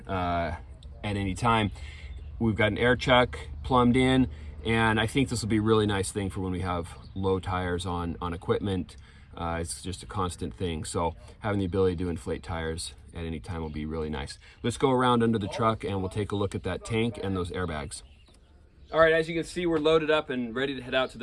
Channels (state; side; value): identical; both; correlation 1.00